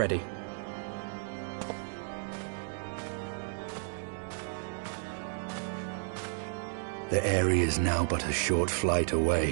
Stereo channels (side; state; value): left; silent; 56 dB below the other